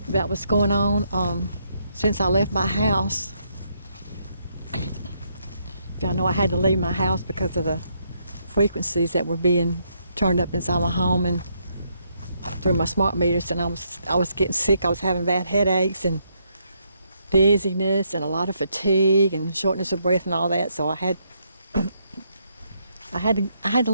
about what's going on since I left my house. Y'all know I had to leave my house because of the frequencies that were being turned up inside my home and through my smart meters, and I was getting sick. I was having bad headaches and dizziness and a lot of fatigue and shortness of breath and all that. So I had to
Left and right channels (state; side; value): inverted; both; correlation -0.75